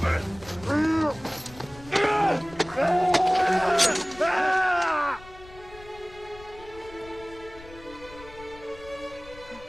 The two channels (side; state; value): left; noise; rumble, 20 dB below the sound